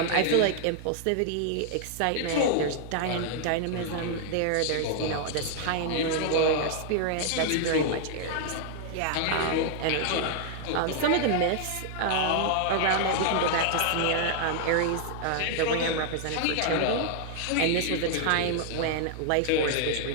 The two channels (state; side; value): different; both; correlation 0.00